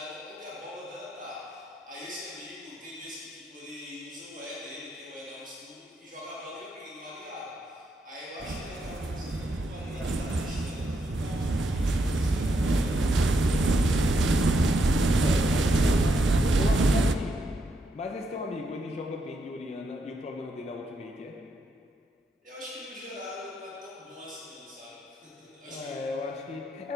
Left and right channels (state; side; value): normal; both; correlation 0.79